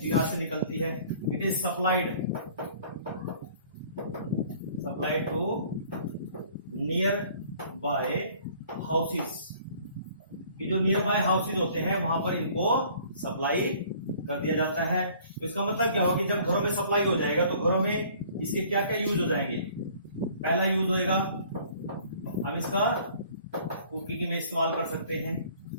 यहां से निकलती है, it is supplied to nearby houses. ये जो नियर बाय हाउसेस होते हैं वहां पर इनको सप्लाई कर दिया जाता है। तो इसका मतलब क्या होगा कि जब घरों में सप्लाई हो जाएगा तो घरों में इसके क्या क्या यूज हो जाएंगे। पहला यूज होएगा, हम इसका कुकिंग में इस्तेमाल कर सकते हैं।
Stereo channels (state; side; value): inverted; both; correlation -0.54